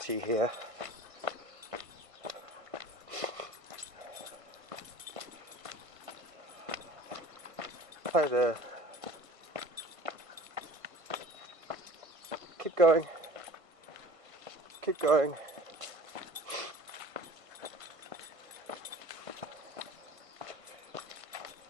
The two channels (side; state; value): left; late; 1.5 ms